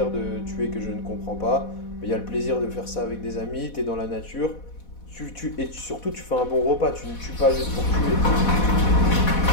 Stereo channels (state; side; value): late; right; 4.1 ms